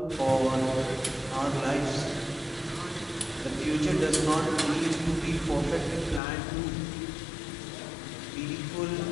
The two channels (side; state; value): right; drops out; at 6.2 s